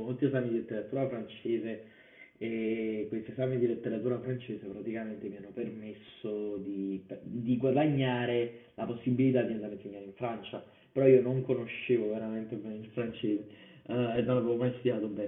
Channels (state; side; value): identical; both; correlation 1.00